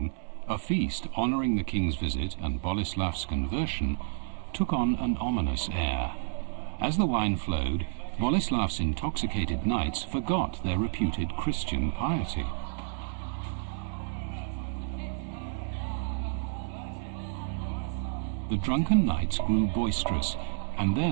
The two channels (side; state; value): left; silent; 58 dB below the other